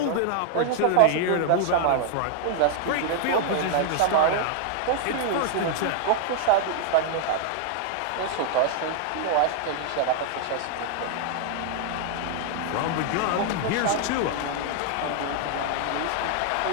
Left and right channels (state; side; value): different; both; correlation 0.00